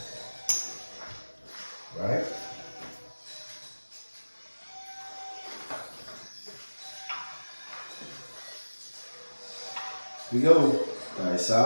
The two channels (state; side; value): inverted; both; correlation -1.00